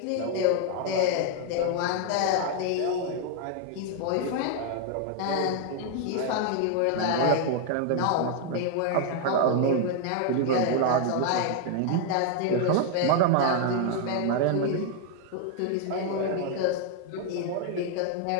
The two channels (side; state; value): both; different; correlation 0.00